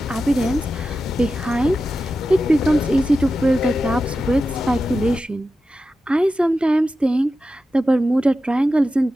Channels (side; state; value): both; normal; correlation 0.92